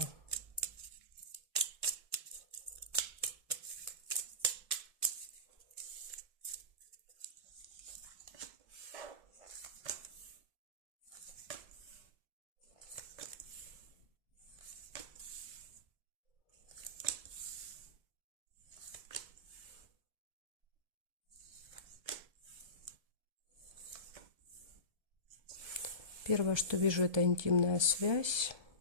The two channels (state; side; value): late; left; 1.7 ms